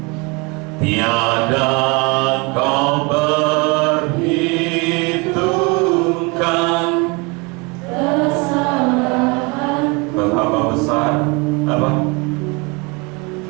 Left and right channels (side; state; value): left; quieter; 28.5 dB